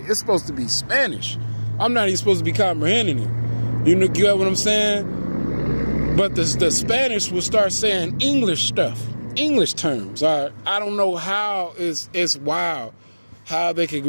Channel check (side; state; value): both; inverted; correlation -1.00